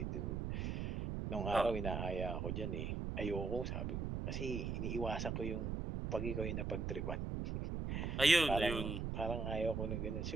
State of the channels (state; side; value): noise; right; rumble, 2 dB below the sound